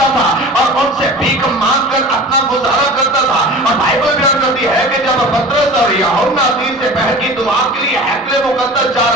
था और उनसे भीख मांगकर अपना गुजारा करता था। और बाइबल बयान करती है कि जब पतरस और यूहन्ना तीसरे पहर की दुआ के लिए हैकले मुकद्दस जा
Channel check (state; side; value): normal; both; correlation 0.38